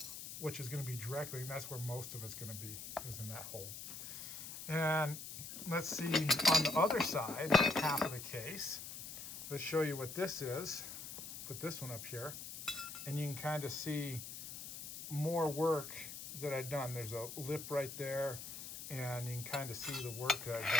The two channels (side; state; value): left; noise; hiss, 9 dB below the sound